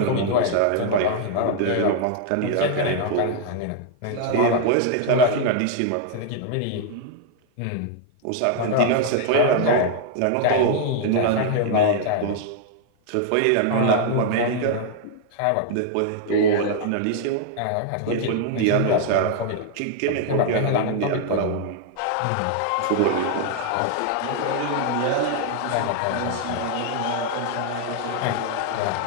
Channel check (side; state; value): both; different; correlation 0.00